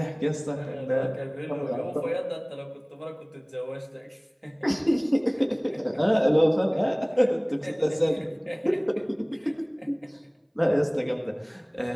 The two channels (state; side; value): identical; both; correlation 1.00